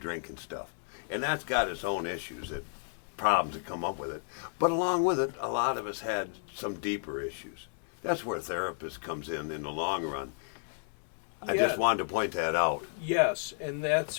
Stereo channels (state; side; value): silent; right; 56 dB below the other